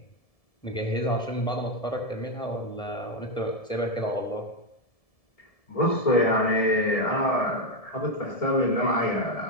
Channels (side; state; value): right; late; 1.7 ms